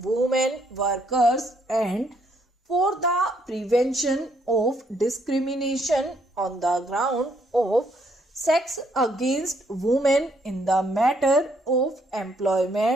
workers and for the prevention of discrimination on the ground of sex against women in the matter of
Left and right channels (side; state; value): both; normal; correlation 0.70